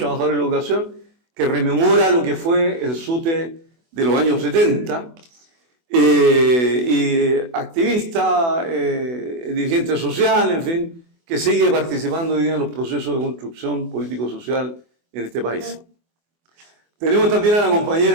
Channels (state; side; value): late; left; 24 ms